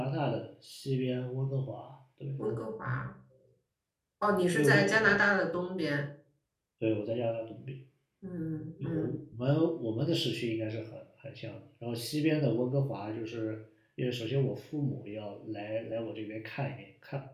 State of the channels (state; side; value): identical; both; correlation 1.00